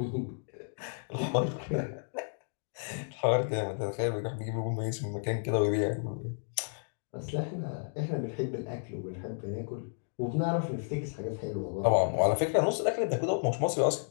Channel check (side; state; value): right; silent; digital silence